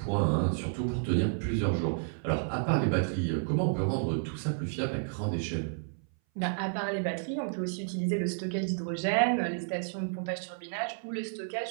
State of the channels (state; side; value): silent; left; 57 dB below the other